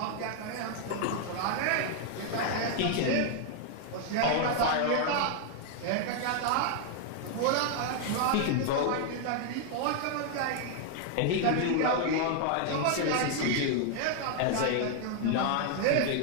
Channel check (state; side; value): different; both; correlation 0.00